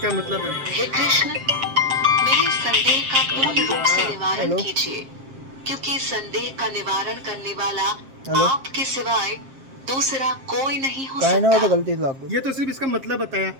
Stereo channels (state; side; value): late; left; 7.5 ms